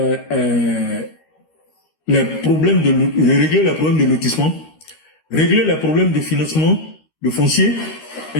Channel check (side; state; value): right; late; 13 ms